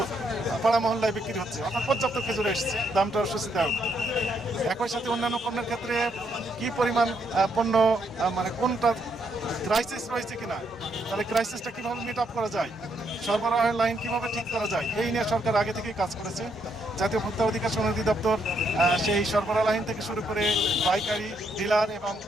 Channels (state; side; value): normal; both; correlation 0.75